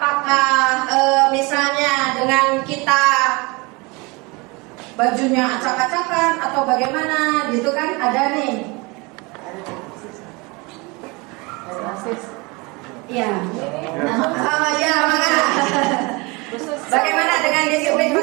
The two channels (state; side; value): quieter; left; 26.6 dB